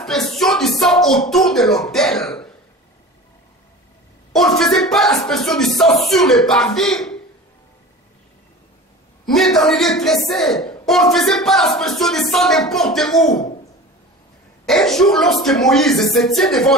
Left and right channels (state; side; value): normal; both; correlation 0.36